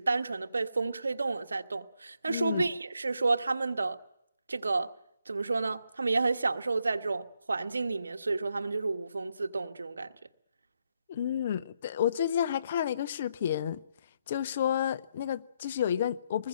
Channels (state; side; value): inverted; both; correlation -0.78